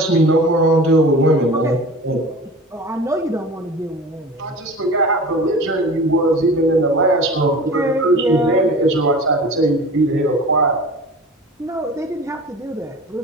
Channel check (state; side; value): normal; both; correlation 0.38